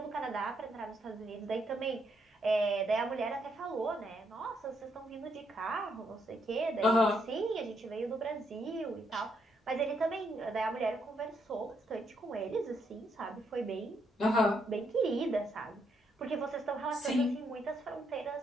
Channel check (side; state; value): both; normal; correlation 0.75